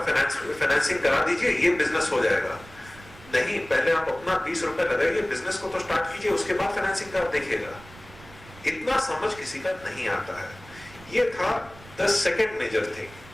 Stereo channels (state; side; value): noise; right; rumble, 21 dB below the sound